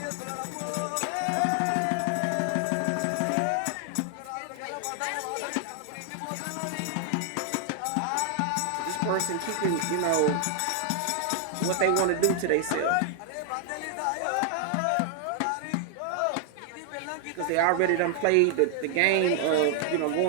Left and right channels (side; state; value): both; different; correlation 0.00